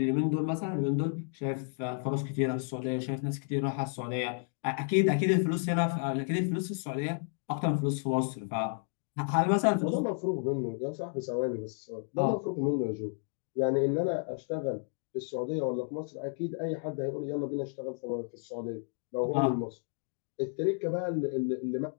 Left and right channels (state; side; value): silent; right; 56 dB below the other